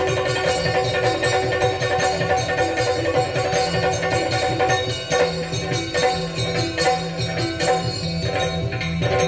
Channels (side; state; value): both; identical; correlation 1.00